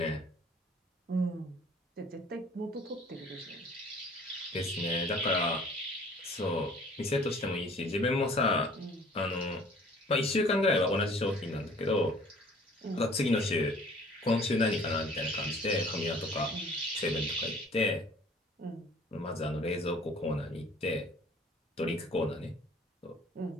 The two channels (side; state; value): both; normal; correlation 0.52